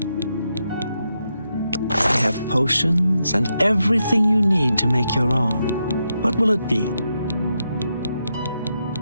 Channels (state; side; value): inverted; both; correlation -0.84